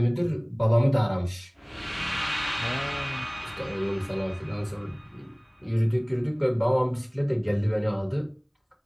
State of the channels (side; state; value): both; identical; correlation 1.00